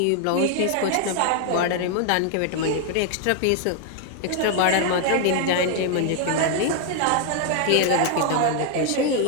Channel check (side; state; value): both; different; correlation 0.00